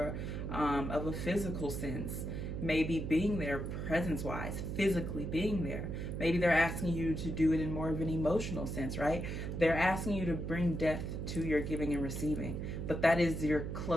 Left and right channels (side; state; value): right; noise; hum, 4 dB below the sound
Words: of a physical sense. Maybe being there presence-wise, physically being there. Maybe they're asking you to do it in more of an emotional sense, right? They're asking you to bring depth to your giving and receiving. But that is your